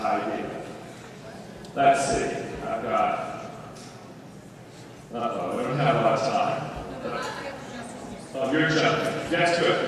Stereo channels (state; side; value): identical; both; correlation 1.00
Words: Let's see, I've got, we don't have a lot of time. Oh, you're jumping. Yes,